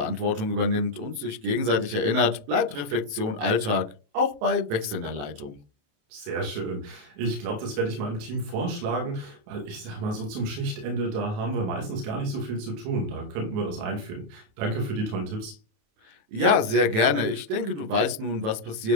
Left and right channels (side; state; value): left; late; 28 ms